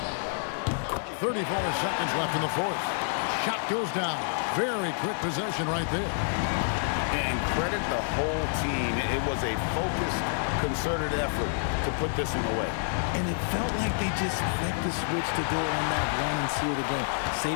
34 seconds left in the fourth. Shot goes down. Very quick possession right there. And credit the whole team. It was a focused, concerted effort to put this one away. And it felt like they just flipped the switch to go on that run and seal the game.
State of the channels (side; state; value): right; silent; digital silence